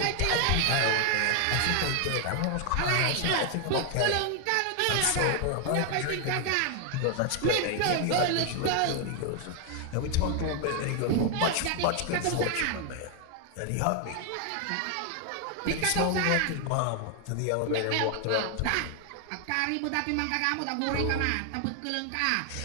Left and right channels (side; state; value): both; different; correlation 0.00